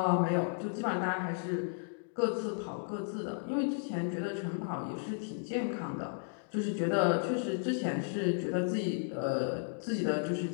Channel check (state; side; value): silent; right; digital silence